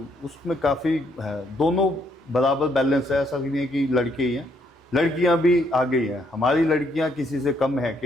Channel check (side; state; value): both; normal; correlation 0.72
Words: उसमें काफ़ी है। दोनों बराबर बैलेंस है, ऐसा नहीं है कि लड़के ही हैं, लड़कियां भी आगे ही हैं। हमारी लड़कियां किसी से कम है